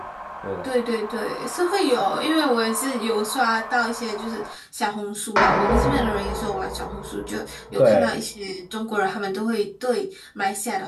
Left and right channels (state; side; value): identical; both; correlation 1.00